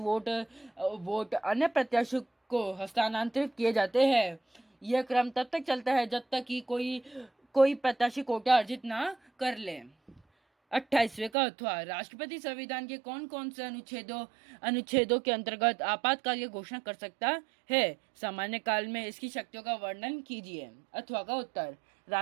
अन्य प्रत्याशी को हस्तांतरित किए जाते हैं। यह क्रम तब तक चलता है जब तक कि कोई प्रत्याशी कोटा अर्जित ना कर ले। 28वें का अथवा। राष्ट्रपति संविधान के कौन कौन से अनुच्छेदों के अंतर्गत आपातकाल की घोषणा कर सकता है? सामान्य काल में इसकी शक्तियों का वर्णन कीजिए। अथवा का उत्तर।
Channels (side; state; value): left; drops out; at 11.3 s